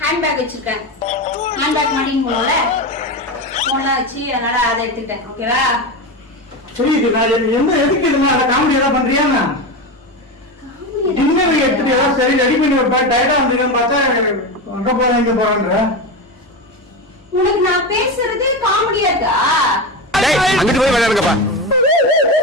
ஹேண்ட் பேக் வச்சிருக்கேன். ஹேண்ட் பேக் மாட்டின்னு போனோம்ல, போன்லாம் வச்சு, அதனால அதை எடுத்துக்கிட்டேன். ஓகேவா? சரி, இது நான் எந்த எதுக்கு இதுமா அதை காமெடி ஏதாவது பண்றியா? டின்னர் எடுத்துட்டு ஏதாவது சரி ரெடி பண்ணி வைப்பேன். டயர்டா வந்துருக்கேன்னு பார்த்தா அங்க போறேன் இங்க போறேன்ற. உனக்கு நான் பேசுறது காமெடியா இருக்கா? அங்கிட்டு போய் விளையாடுங்கப்பா.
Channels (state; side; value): normal; both; correlation 0.19